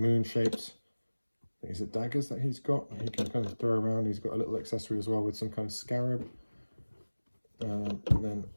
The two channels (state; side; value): inverted; both; correlation -1.00